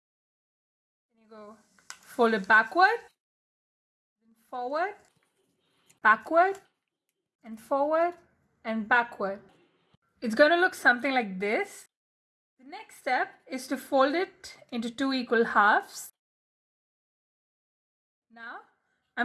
Then you go fold it backward, then forward, backward, and forward, and backward. It's going to look something like this. The next step is to fold it into two equal halves. Now,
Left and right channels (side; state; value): both; identical; correlation 1.00